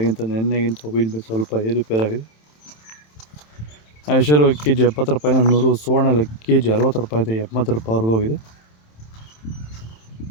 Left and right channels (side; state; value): right; late; 27 ms